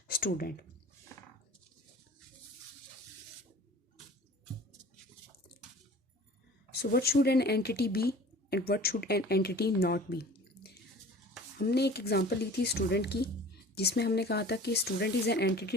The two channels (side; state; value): both; normal; correlation 0.44